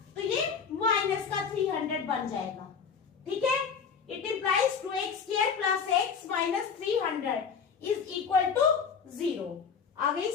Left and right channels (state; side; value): quieter; right; 6.3 dB